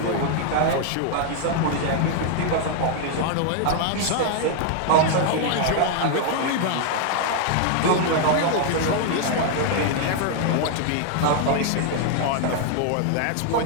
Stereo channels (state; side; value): different; both; correlation 0.00